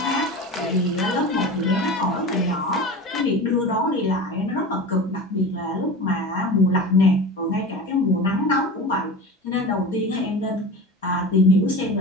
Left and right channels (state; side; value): normal; both; correlation 0.31